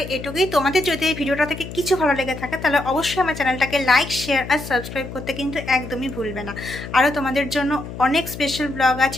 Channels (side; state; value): left; noise; hum, 10 dB below the sound